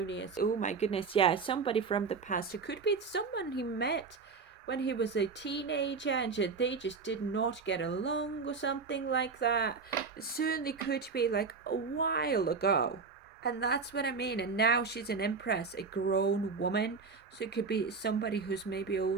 Oh my goodness, yeah, somebody from the past. It could be someone he met when he was a teenager and they just did not get along or something like that. It certainly could be like a while ago. And that's what I mean. And now she's an Empress, a grown woman. So it could be somebody who's maybe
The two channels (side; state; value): left; quieter; 4.9 dB